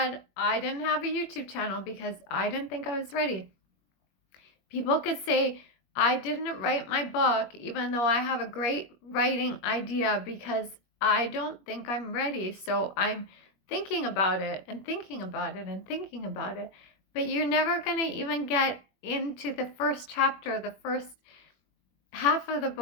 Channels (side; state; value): right; late; 21 ms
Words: I didn't have a YouTube channel because I didn't think I was ready. People could say, I didn't write my book even though I have a great writing idea because I don't think I'm ready. So I'm thinking about it and thinking about it and thinking about it. But you're never going to even get into the first chapter, the first half of the